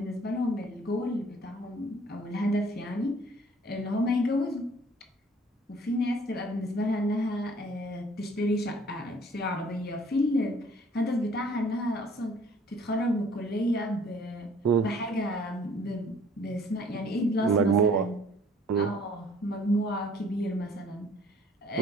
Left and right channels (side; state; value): both; normal; correlation 0.56